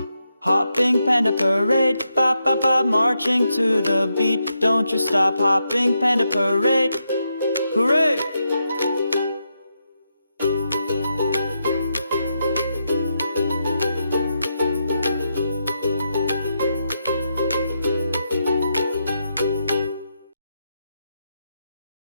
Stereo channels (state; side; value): inverted; both; correlation -0.83